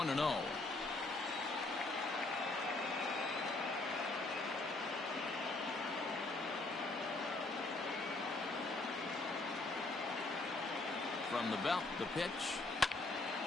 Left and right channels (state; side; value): quieter; right; 3.1 dB